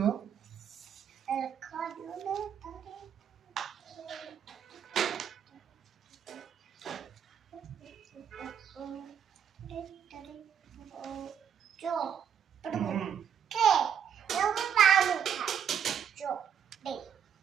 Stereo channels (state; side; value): quieter; left; 8.2 dB